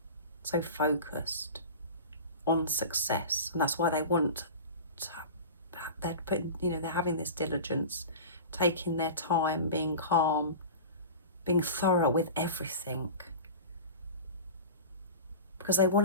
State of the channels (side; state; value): both; inverted; correlation -0.33